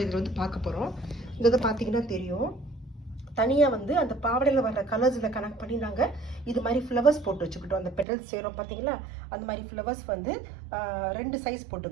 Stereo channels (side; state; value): left; drops out; at 8.1 s